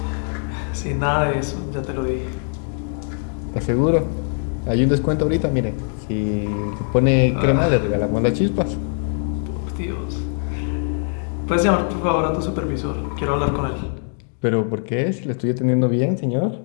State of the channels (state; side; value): silent; right; 57 dB below the other